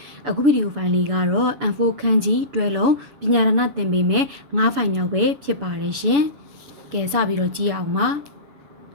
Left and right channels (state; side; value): late; left; 7.0 ms